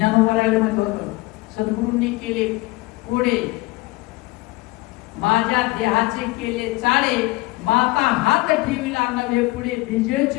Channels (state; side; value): quieter; right; 21.6 dB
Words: म्हणत होतं सद्गुरूंनी केले कोडे माझ्या देहाचे केले चाळे माता हात ठेविला नव्हे पुढे बीजेच